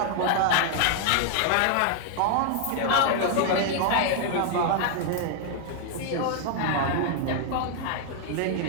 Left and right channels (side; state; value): both; different; correlation 0.00